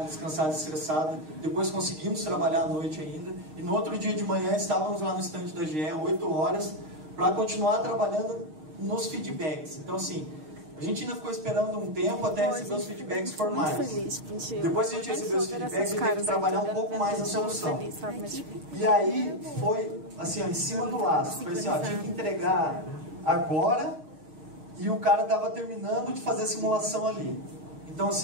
descansada, estressada. Depois conseguimos trabalhar à noite ainda. E no outro dia de manhã estávamos lá no stand da GE, 8 horas, para continuar trabalhando nos feedbacks. Então, assim, a gente ainda ficou esperando um tempo até receber os feedbacks formais. Depois que a gente recebeu os feedbacks, a gente teve que trabalhar um pouco mais na solução. E aí foi assim, ó, em cima do laço. Foi assim, ó, tinha que entregar agora. E o cara estava terminando de fazer a simulação ali. Então,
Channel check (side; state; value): left; late; 6.4 ms